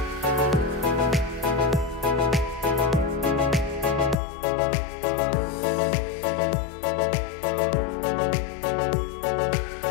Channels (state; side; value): drops out; right; at 4.2 s